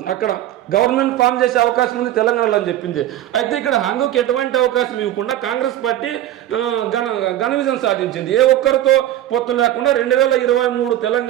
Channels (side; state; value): left; quieter; 12.9 dB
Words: అక్కడ గవర్నమెంట్ ఫామ్ చేసే అవకాశం ఉంది తెలంగాణలో అని చెప్పింది. అయితే ఇక్కడ హంగుకి ఎటువంటి అవకాశం ఇవ్వకుండా కాంగ్రెస్ పార్టీ ఘన విజయం సాధించింది. ఏ ఒక్కరితో పొత్తు లేకుండా 2023